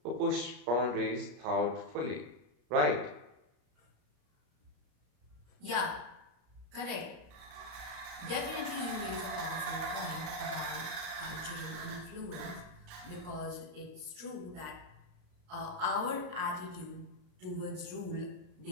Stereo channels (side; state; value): left; late; 33 ms